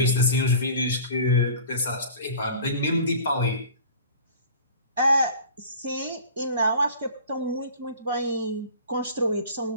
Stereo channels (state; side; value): inverted; both; correlation -0.43